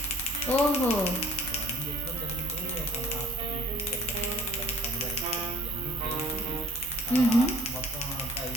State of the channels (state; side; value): normal; both; correlation 0.54